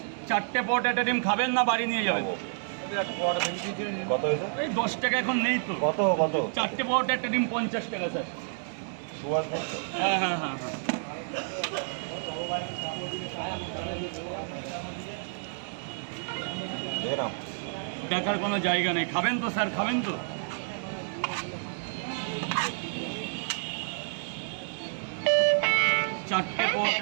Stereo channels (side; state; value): left; silent; digital silence